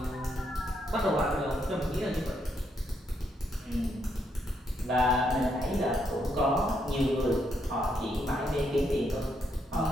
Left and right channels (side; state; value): both; normal; correlation 0.76